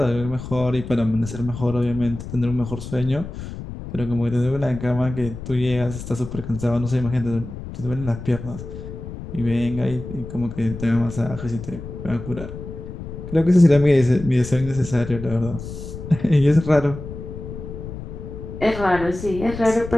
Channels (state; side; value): noise; left; rumble, 10 dB below the sound